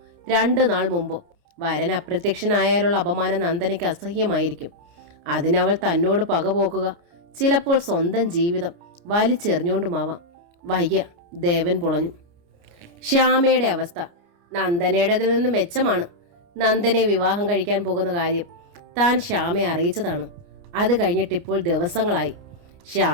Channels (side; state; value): left; late; 29 ms